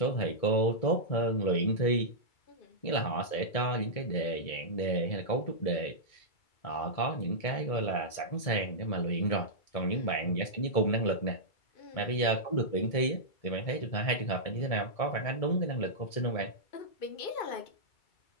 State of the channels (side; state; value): right; late; 2.3 ms